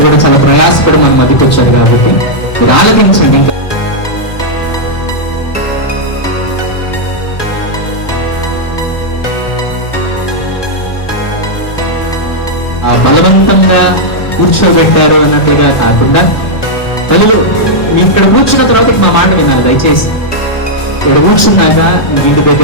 కూడా చాలా ప్రయాసపడి మన మధ్యకి వచ్చారు కాబట్టి మీరు ఆలకించండి. ఇంకా బలవంతంగా కూర్చోబెట్టారు అన్నట్లుగా కాకుండా తెలుగు మీ ఇక్కడ కూర్చున్న తర్వాత మా మాట వినాలి దయచేసి. ఇక్కడ కూర్చున్నాక ఇంటి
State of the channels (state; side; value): late; right; 1.2 ms